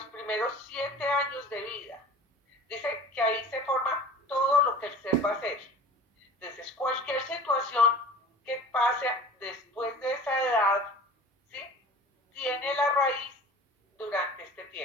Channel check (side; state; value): both; normal; correlation 0.42